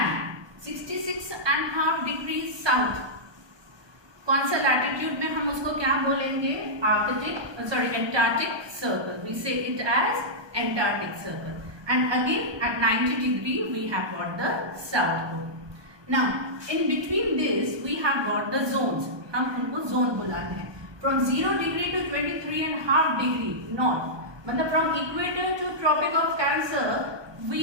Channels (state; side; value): late; left; 1.2 ms